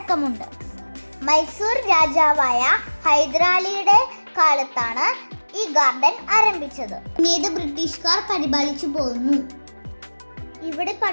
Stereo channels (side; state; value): both; inverted; correlation -1.00